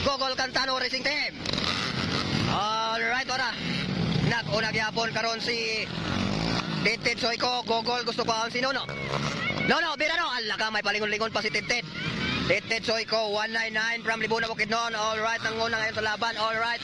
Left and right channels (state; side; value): identical; both; correlation 1.00